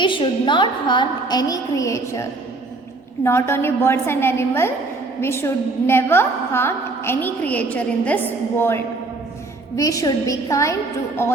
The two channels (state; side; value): quieter; left; 3.3 dB